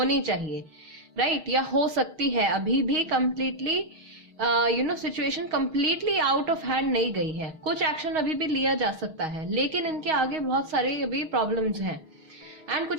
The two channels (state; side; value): late; left; 6.3 ms